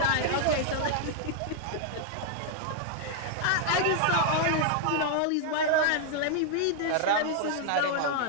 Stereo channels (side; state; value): both; different; correlation 0.00